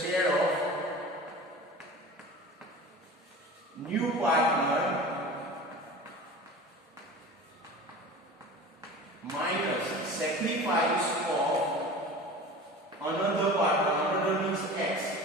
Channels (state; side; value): normal; both; correlation 0.37